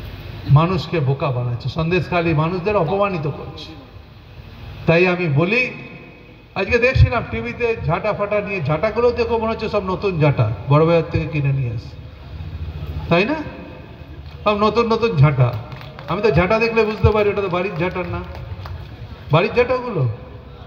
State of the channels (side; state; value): both; identical; correlation 1.00